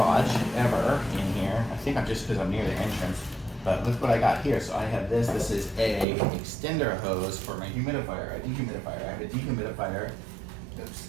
ever in here. I think I'm just because I'm near the entrance, but look what I got here. So I have this. This is a extender hose for my humidifier, a dehumidifier. I have a dehumidifier. Oops,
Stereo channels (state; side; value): drops out; left; at 6.1 s